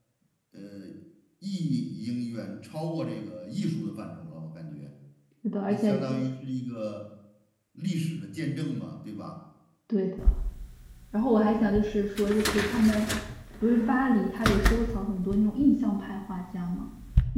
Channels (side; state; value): both; identical; correlation 1.00